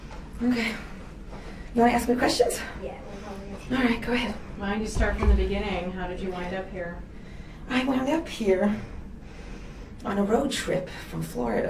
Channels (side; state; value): both; identical; correlation 1.00